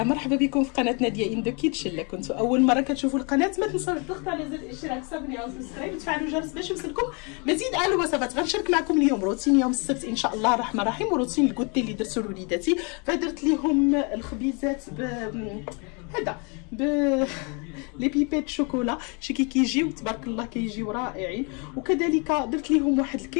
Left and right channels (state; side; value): quieter; right; 33.5 dB